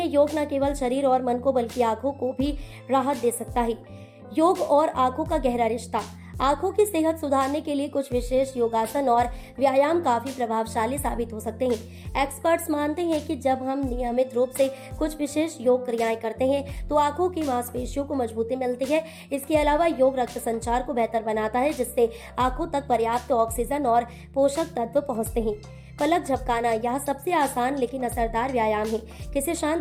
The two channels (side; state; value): both; identical; correlation 1.00